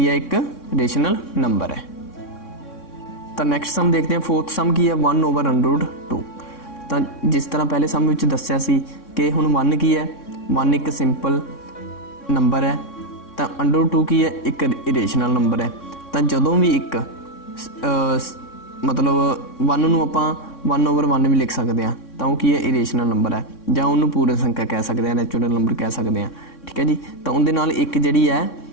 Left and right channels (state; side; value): late; right; 3.6 ms